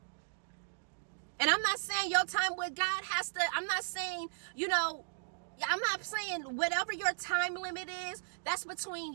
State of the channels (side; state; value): left; silent; digital silence